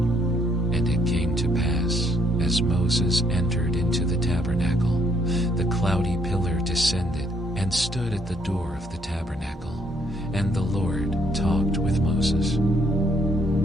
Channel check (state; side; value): normal; both; correlation 0.70